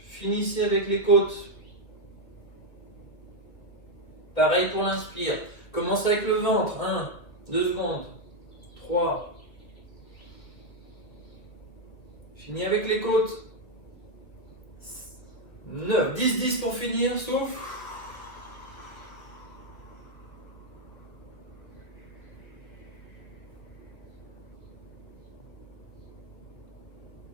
Finissez avec les côtes. Pareil pour l'inspire. Commencez avec le ventre. 1, 2 secondes. 3. Finis avec les côtes. 9. 10, 10 pour finir. Souffle.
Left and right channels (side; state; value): right; late; 1.6 ms